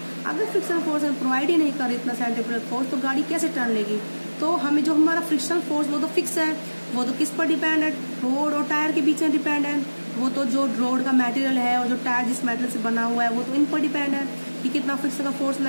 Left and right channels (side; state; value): both; inverted; correlation -1.00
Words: अगर फ्रिक्शनल फोर्स हमें प्रोवाइड ही नहीं करे इतना सेंट्रीपिटल फोर्स, तो गाड़ी कैसे टर्न लेगी? तो हमें जो हमारा फ्रिक्शनल फोर्स वो तो फिक्स है, वो तो किस पर डिपेंड है, रोड और टायर के बीच में डिपेंड है। वो तो जो रोड का मटेरियल है और जो टायर जिस मटेरियल से बना हुआ है वो तो इन पर डिपेंड है कि कितना फ्रिक्शन का फोर्स